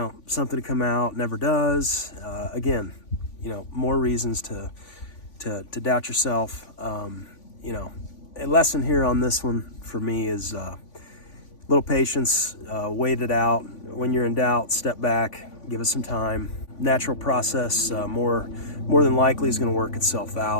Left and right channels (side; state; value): right; late; 3.5 ms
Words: something to come out, never does. Again, you know, more reasons to doubt yourself. You know, a lesson here on this one for me is little patience, wait it out. When you're in doubt, step back, give it some time. Natural process, more than likely, is going to work itself